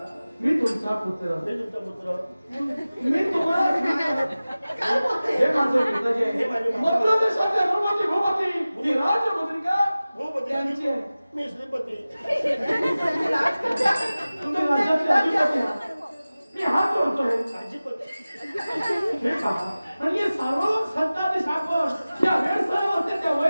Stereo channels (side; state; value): both; inverted; correlation -0.97